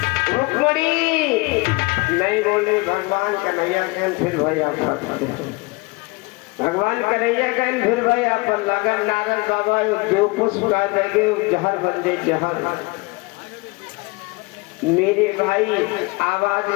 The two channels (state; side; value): quieter; right; 25.9 dB